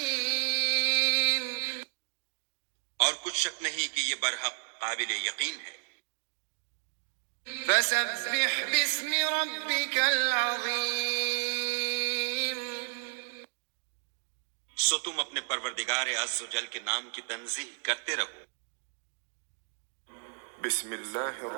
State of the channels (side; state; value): left; silent; 56 dB below the other